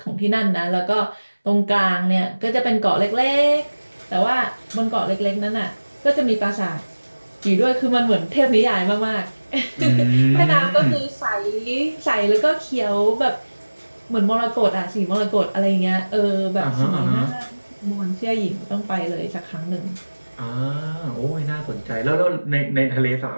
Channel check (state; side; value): inverted; both; correlation -1.00